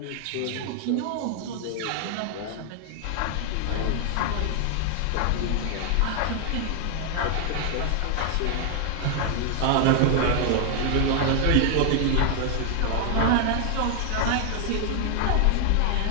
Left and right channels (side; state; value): both; different; correlation 0.00